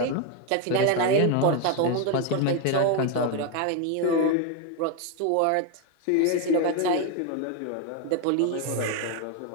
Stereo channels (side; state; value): both; different; correlation 0.01